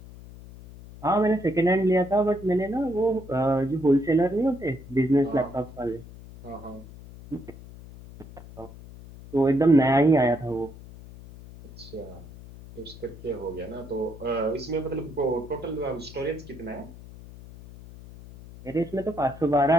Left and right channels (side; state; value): left; noise; hum, 17 dB below the sound